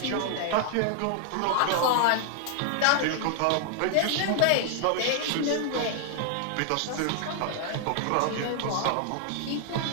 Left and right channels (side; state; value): both; different; correlation 0.00